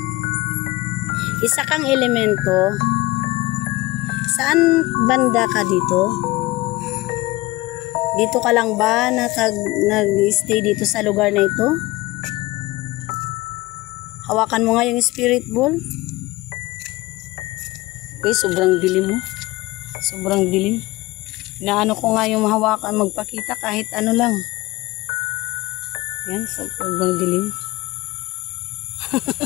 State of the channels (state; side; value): quieter; right; 20.3 dB